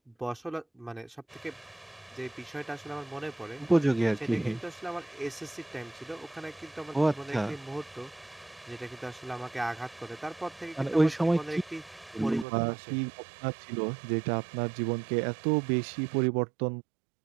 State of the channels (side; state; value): left; drops out; at 12.5 s